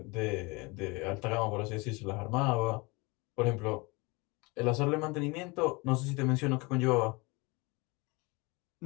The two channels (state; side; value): quieter; right; 26.2 dB